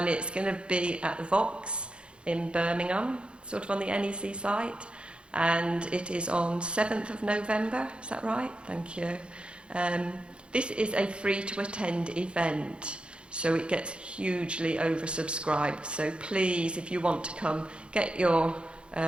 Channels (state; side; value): late; left; 0.056 ms